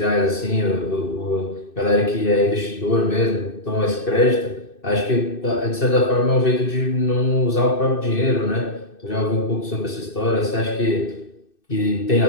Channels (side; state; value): right; late; 2.6 ms